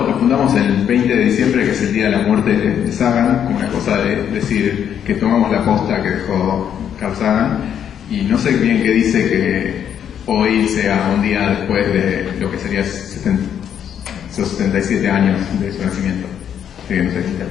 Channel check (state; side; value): quieter; right; 9.0 dB